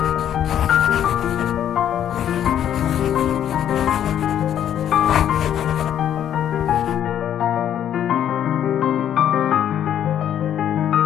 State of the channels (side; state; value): right; quieter; 10.2 dB